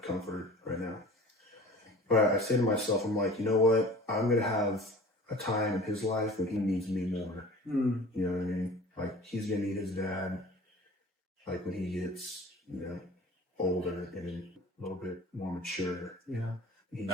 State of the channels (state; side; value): normal; both; correlation 0.43